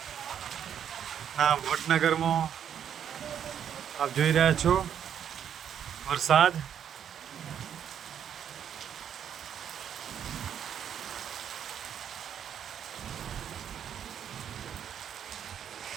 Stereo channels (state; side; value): quieter; left; 8.9 dB